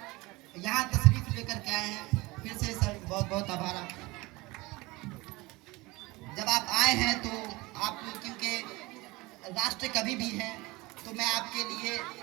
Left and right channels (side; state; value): left; quieter; 22.5 dB